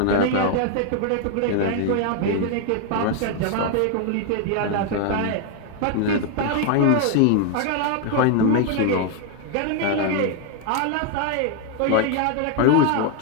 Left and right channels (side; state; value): both; different; correlation 0.01